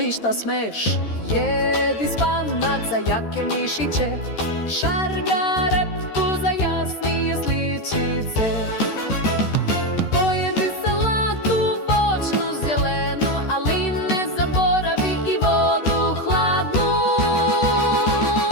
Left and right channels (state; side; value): late; right; 13 ms